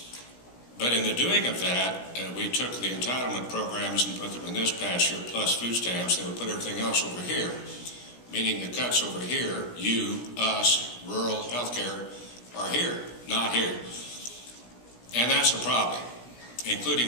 But in the doing of that, we took the entitlement programs and put them in this past year, plus food stamps. They would put everything else over here, meaning the cuts over here, you, us, rural healthcare, are here, not here. And that's a problem,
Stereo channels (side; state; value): right; late; 17 ms